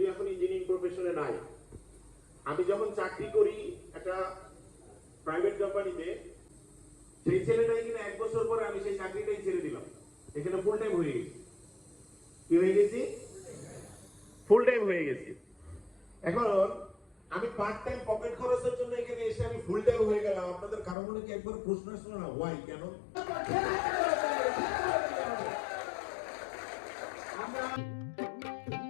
এখন ইঞ্জিনিয়ারিং প্রফেশনে নাই, আমি যখন চাকরি করি একটা প্রাইভেট কোম্পানিতে, সেই ছেলেটাই কিনা 1 বছর পরে আমি সেই চাকরিটাই ছেড়ে দিলাম, এখানে ফুল টাইম হয়ে গেছি। কি হয়ে গেছি? ফুল টাইম হয়ে গেছি। এখন আমি পার্ট টাইম পকেট খরচের জন্য এখানে এসে আমি ফুল টাইম হয়ে গেলাম। আপনাদের কারো মনে কি একবার প্রশ্ন আসলো না, ওয়াই, কেন?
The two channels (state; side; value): drops out; right; at 21.0 s